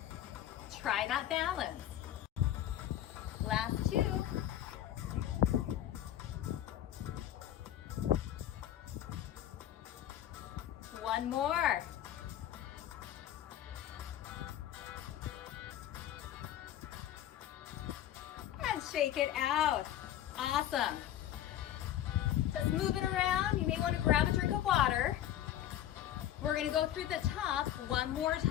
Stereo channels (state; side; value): quieter; right; 11.9 dB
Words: try that balance. Last two. One more. And shake it out. Awesome. Just move it around. You may want to grab a drink of water. We're going to go through the top one more